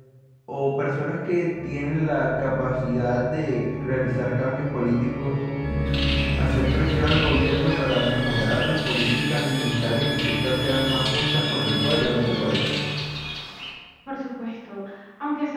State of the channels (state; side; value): identical; both; correlation 1.00